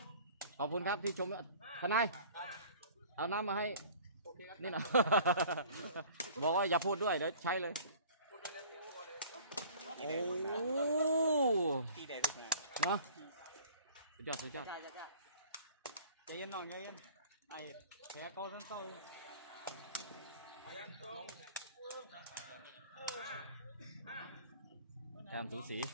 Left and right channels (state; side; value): inverted; both; correlation -0.47